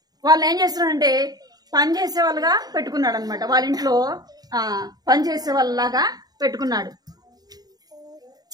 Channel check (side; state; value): left; late; 0.19 ms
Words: వాళ్ళని ఏం చేస్తున్నాడంటే పని చేసే వాళ్ళుగా పెట్టుకున్నాడు అనమాట. వాళ్ళ ఇంట్లో పని చేసే వాళ్ళలాగా పెట్టుకున్నాడు.